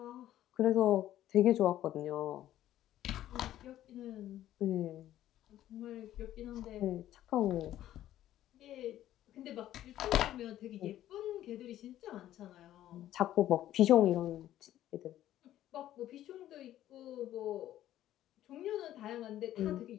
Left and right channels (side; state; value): right; quieter; 12.9 dB